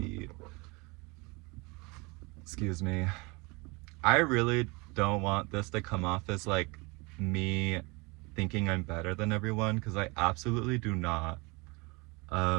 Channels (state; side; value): quieter; left; 26.9 dB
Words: excuse me, I really don't want this to come off as like me thinking I'm better than everyone, because I absolutely do not.